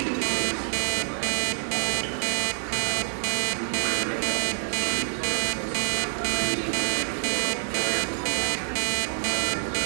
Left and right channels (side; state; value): left; silent; 60 dB below the other